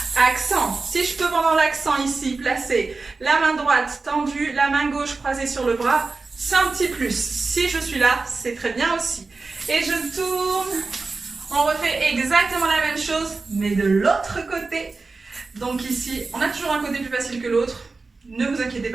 accent. Si je peux pendant l'accent ici, placer la main droite tendue, la main gauche croisée sur le bras, c'est un petit plus. Si je suis là, c'est très bien aussi. Et je tourne. On refait exactement la même chose, mais de l'autre côté. Donc ici, on a toujours un côté plus facile que l'autre. Ne vous inquiétez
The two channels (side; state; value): left; quieter; 3.9 dB